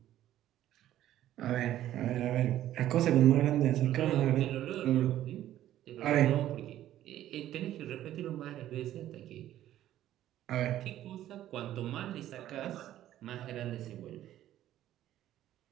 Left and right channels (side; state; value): left; quieter; 12.8 dB